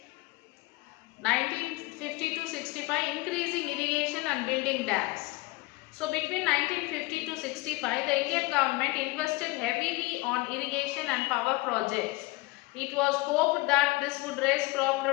1950 to 65, increasing irrigation and building dams. So between 1950 to 65, the Indian government invested heavily on irrigation and power projects. It was hoped that this would raise crop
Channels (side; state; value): right; quieter; 22.3 dB